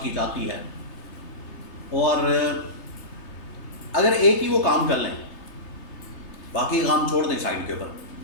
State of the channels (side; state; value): right; late; 3.3 ms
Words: کی جاتی ہے، اور اگر ایک ہی وہ کام کر لیں، باقی کام چھوڑ دیں سائڈ کے اوپر،